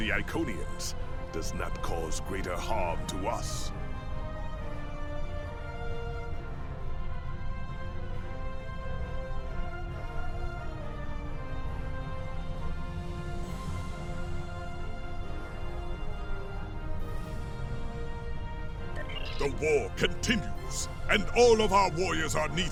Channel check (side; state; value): both; identical; correlation 1.00